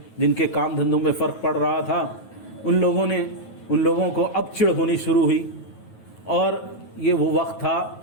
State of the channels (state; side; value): late; right; 9.3 ms